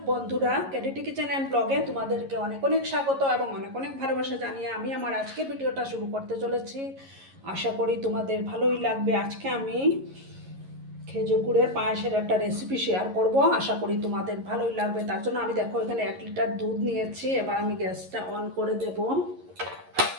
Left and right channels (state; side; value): late; left; 11 ms